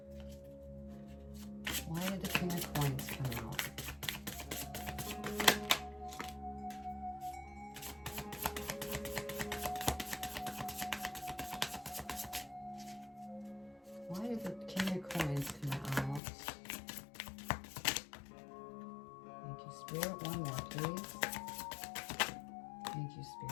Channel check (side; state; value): right; drops out; at 16.2 s